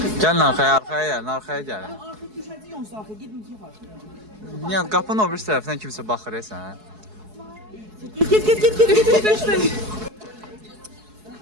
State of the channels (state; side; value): late; left; 4.7 ms